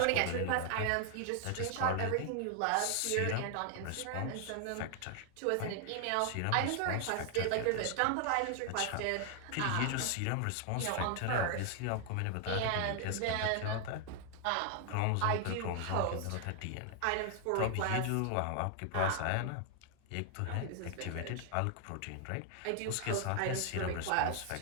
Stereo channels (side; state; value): both; different; correlation 0.00